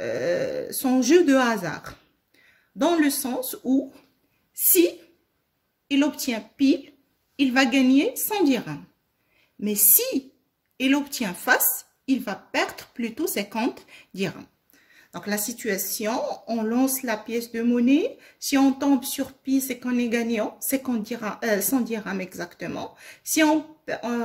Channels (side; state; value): both; identical; correlation 1.00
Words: son jeu de hasard. Dans le sens où, si il obtient pile, il va gagner 100 dirhams. Mais si il obtient face, il va perdre plutôt 50 dirhams. Donc la situation, on lance la pièce de monnaie. Si on tombe sur pile, c'est qu'on est gagnant, 100 dirhams exactement. Si on